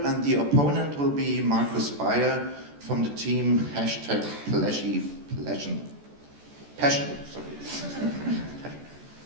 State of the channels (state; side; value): late; left; 14 ms